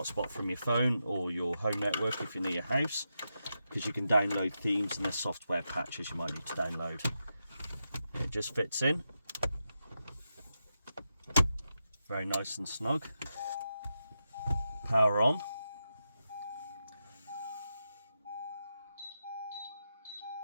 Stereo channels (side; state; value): both; inverted; correlation -0.87